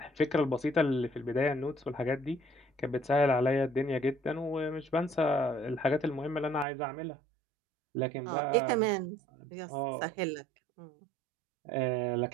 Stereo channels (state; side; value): drops out; left; at 6.7 s